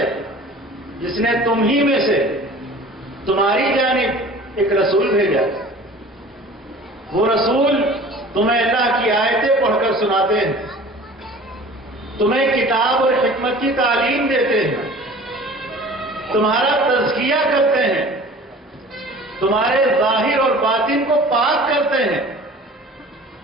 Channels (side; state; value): both; normal; correlation 0.44